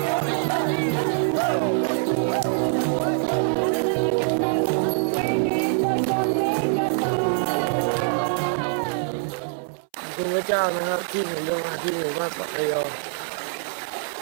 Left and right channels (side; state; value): left; silent; 62 dB below the other